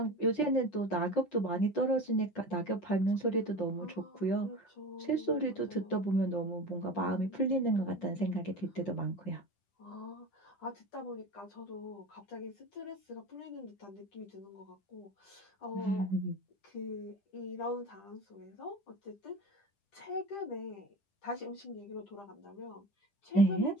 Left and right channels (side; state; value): right; late; 10 ms